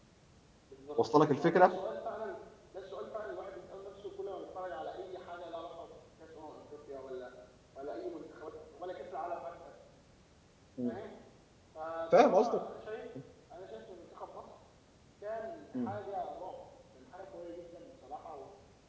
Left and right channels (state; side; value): identical; both; correlation 1.00